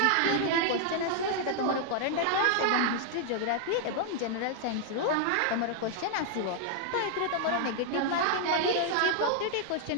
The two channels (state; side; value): different; both; correlation 0.00